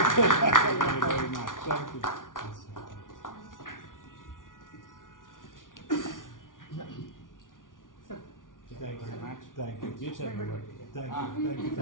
very much. Thank you. Thank you very much. Thank you. You tell me what. Thank you. Thank you.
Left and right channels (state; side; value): late; right; 0.88 ms